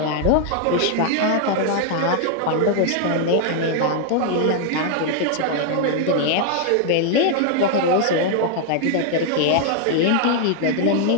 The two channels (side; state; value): both; different; correlation 0.00